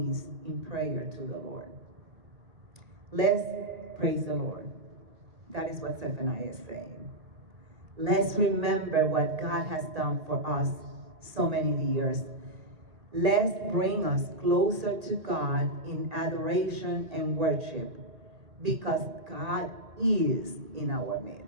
in prayer to the Lord. Let's praise the Lord. That is what Zephaniah is saying. Let's remember what God has done for us so many years. Let's bring us closer to God in adoration and worship, because God is in our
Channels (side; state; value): left; late; 1.8 ms